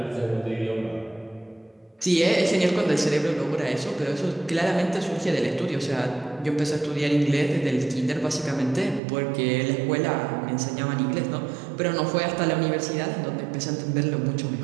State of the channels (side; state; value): left; drops out; at 9.0 s